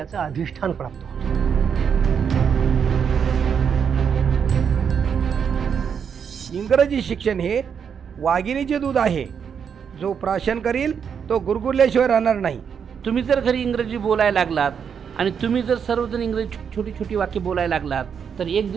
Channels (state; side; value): quieter; left; 7.2 dB